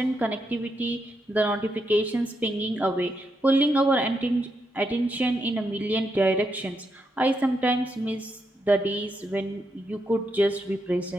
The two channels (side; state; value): both; normal; correlation 0.81